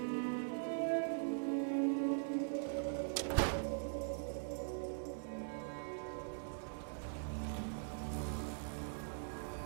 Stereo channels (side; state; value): left; silent; digital silence